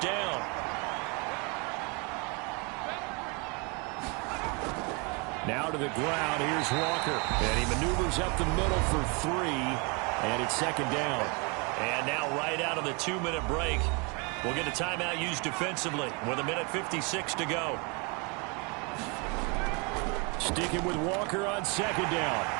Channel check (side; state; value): left; quieter; 31.6 dB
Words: Now to the ground, here's Walker. And he maneuvers up the middle for 3, and it's 2nd down. And now right out of the 2-minute break, we'll get a timeout used defensively with 1:56 to go. Sticking with Walker on 2nd down.